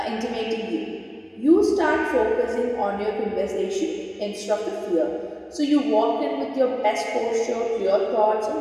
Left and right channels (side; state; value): both; identical; correlation 1.00